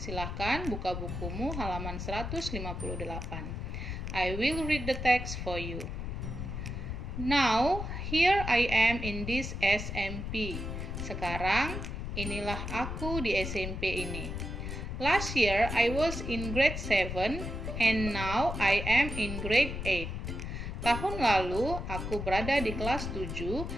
buka bukumu halaman 158. I will read the text for you. Now, here I am in this SMP. Sekarang, inilah aku di SMP ini. Last year, I was in grade 7 and now I am in grade 8. Tahun lalu, aku berada di kelas 7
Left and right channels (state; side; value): noise; left; rumble, 5 dB below the sound